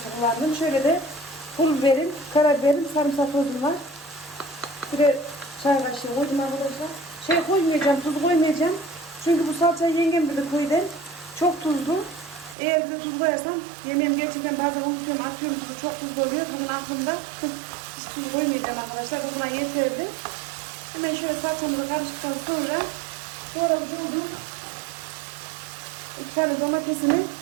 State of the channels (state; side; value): drops out; left; at 12.6 s